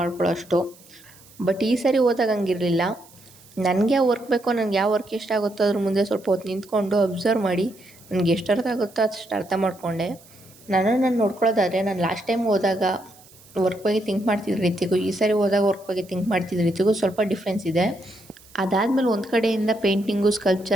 ಅಷ್ಟು. ಬಟ್ ಈ ಸಾರಿ ಹೋದಾಗ ಹಂಗಿರಲಿಲ್ಲ. ನನಗೆ ಯಾವ ವರ್ಕ್ ಬೇಕೋ, ನನಗೆ ಯಾವ ವರ್ಕ್ ಇಷ್ಟ ಆಗುತ್ತೋ ಅದ್ರ ಮುಂದೆ ಸ್ವಲ್ಪ ಹೊತ್ತು ನಿಂತ್ಕೊಂಡು ಅಬ್ಸರ್ವ್ ಮಾಡಿ ನನಗೆ ಎಷ್ಟು ಅರ್ಥ ಆಗುತ್ತೋ ಅಷ್ಟು ಅರ್ಥ ಮಾಡಿಕೊಂಡೆ. ನಾನು ನೋಡ್ಕೊಳ್ಳೋದಾದರೆ, ನಾನು ಲಾಸ್ಟ್ ಟೈಮ್ ಹೋದಾಗ ವರ್ಕ್ ಬಗ್ಗೆ ಥಿಂಕ್ ಮಾಡ್ತಿದ್ದ ರೀತಿಗೂ ಈ ಸಾರಿ ಹೋದಾಗ ವರ್ಕ್ ಬಗ್ಗೆ ಥಿಂಕ್ ಮಾಡ್ತಿದ್ದ ರೀತಿಗೂ ಸ್ವಲ್ಪ ಡಿಫ್ರೆನ್ಸ್ ಇದೆ. ಅದಾದಮೇಲೆ ಒಂದು ಕಡೆಯಿಂದ ಪೇಂಟಿಂಗು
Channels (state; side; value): noise; right; hiss, 25 dB below the sound